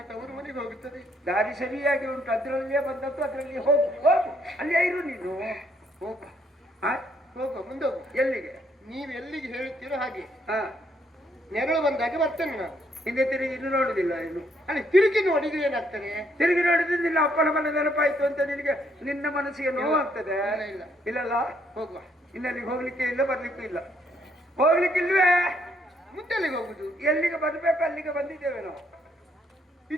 ತವರು ಮನೆಗೆ ಹೋಗುತ್ತದೆ ದಾರಿ ಸರಿಯಾಗಿ ಉಂಟು ಅದ್ರಲ್ಲಿಯೇ ಬಂದದ್ದು ಅದ್ರಲ್ಲಿ ಹೋಗು ಹೋಗು ಅಲ್ಲೇ ಇರು ನೀನು ಹೋಗ ಹಾ ಹೋಗುವ ಮುಂದೆ ಹೋಗು ಎಲ್ಲಿಗೆ ನೀವು ಎಲ್ಲಿಗೆ ಹೇಳ್ತೀರೋ ಹಾಗೆ ಹಾ ನೆರಳು ಬಂದಾಗ ಬರ್ತೇನೆ ನಾನು ಹಿಂದೆ ತಿರುಗಿ ಇನ್ನು ನೋಡುದಿಲ್ಲ ಇನ್ನು ಅಲ್ಲಿ ತಿರುಗಿ ನೋಡಿದ್ರೆ ಏನಾಗ್ತದೆ ತಿರುಗಿ ನೋಡಿದ್ರೆ ನಿನ್ನ ಅಪ್ಪನ ಮನೆ ನೆನಪಾಯ್ತು ಅಂತ ನಿನಗೆ ನಿನ್ನ ಮನಸ್ಸಿಗೆ ನೋವಾಗ್ತದೆ ಇಲ್ಲ, ಇಲ್ಲ. ಇಲ್ಲಲ್ಲ ಹೋಗುವ ಇನ್ನಲ್ಲಿಗೆ ಹೋಗ್ಲಿಕ್ಕೆ ಇಲ್ಲ ಬರ್ಲಿಕ್ಕೂ ಇಲ್ಲ ಹೋಗ್ಲಿಕ್ಕಿಲ್ವೇ ಮುಂದೆಲ್ಲಿಗೆ ಹೋಗುದು ಎಲ್ಲಿಗೆ ಬರ್ಬೇಕು ಅಲ್ಲಿಗೆ ಬಂದಿದ್ದೇವೆ ನಾವು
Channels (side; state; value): both; normal; correlation 0.70